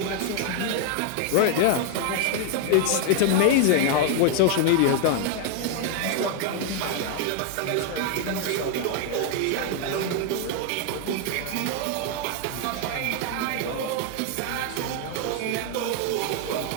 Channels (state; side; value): different; both; correlation 0.00